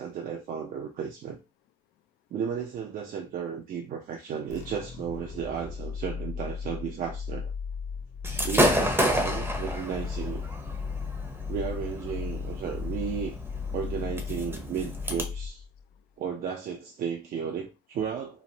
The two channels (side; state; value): both; normal; correlation 0.48